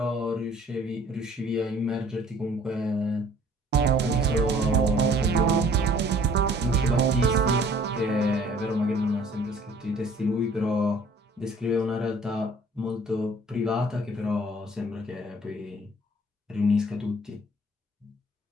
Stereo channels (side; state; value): both; normal; correlation 0.55